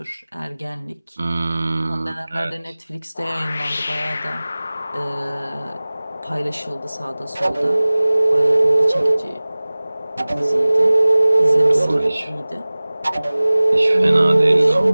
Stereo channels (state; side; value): inverted; both; correlation -0.99